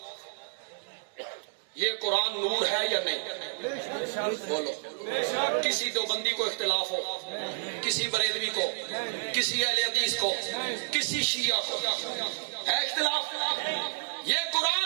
یہ قرآن نور ہے یا نہیں؟ بولو۔ کسی دیوبندی کو اختلاف ہو، کسی بریلوی کو، کسی اہل حدیث کو، کسی شیعہ کو ہے اختلاف؟ یہ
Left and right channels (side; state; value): left; silent; 58 dB below the other